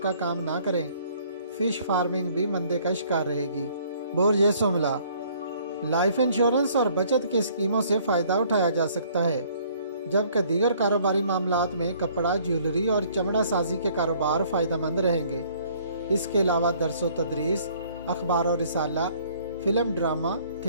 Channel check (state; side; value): inverted; both; correlation -0.59